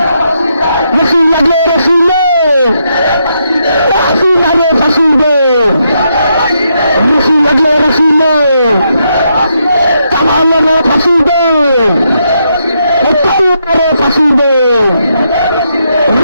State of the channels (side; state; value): both; inverted; correlation -0.79